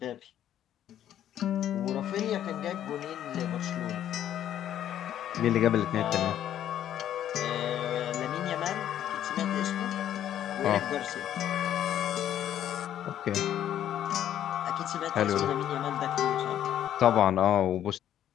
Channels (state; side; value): quieter; right; 11.0 dB